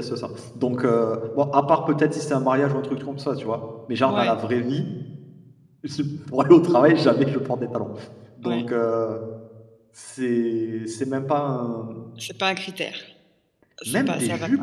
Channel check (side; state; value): both; identical; correlation 1.00